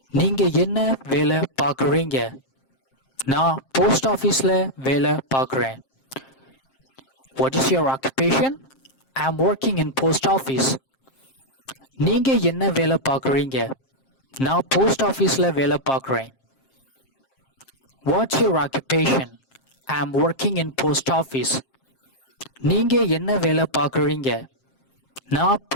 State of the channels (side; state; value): right; late; 7.5 ms